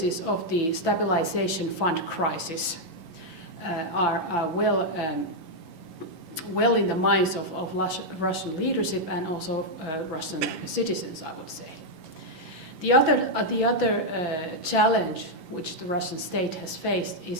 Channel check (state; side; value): late; left; 11 ms